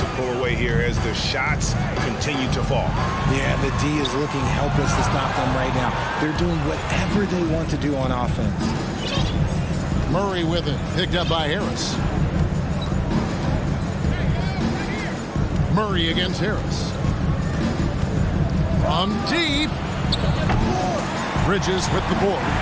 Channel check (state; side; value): identical; both; correlation 1.00